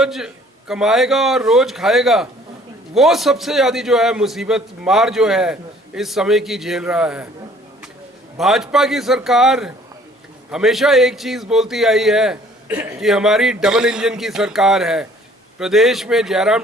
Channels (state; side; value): normal; both; correlation 0.56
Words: कमाएगा और रोज खाएगा, वो सबसे ज़्यादा जो है मुसीबत मार जो है इस समय की झेल रहा है। भाजपा की सरकार हमेशा एक चीज़ बोलती आई है कि हमारी डबल इंजन की सरकार है। प्रदेश में